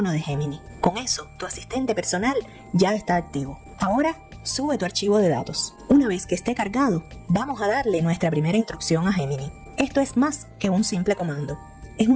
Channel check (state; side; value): identical; both; correlation 1.00